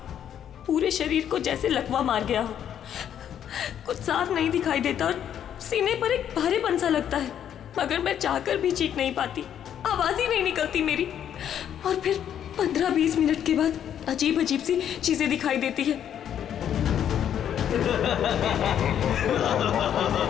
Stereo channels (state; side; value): quieter; right; 9.6 dB